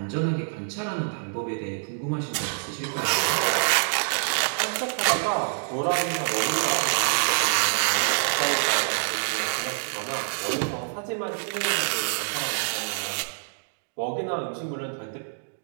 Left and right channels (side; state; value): left; silent; digital silence